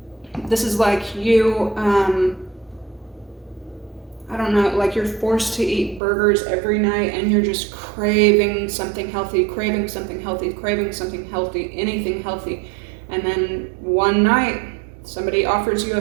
This is like you, I don't know, like you're forced to eat burgers every night and you're just craving something healthy, craving something healthy, craving something healthy, anything healthy. And then one night somebody offers you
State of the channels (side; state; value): left; drops out; at 6.0 s